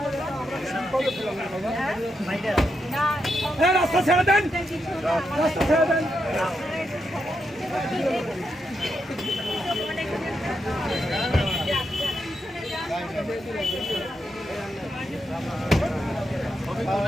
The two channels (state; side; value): normal; both; correlation 0.83